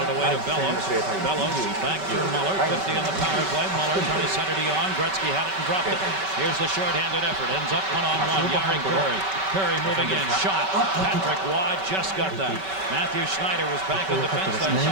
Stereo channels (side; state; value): left; late; 5.2 ms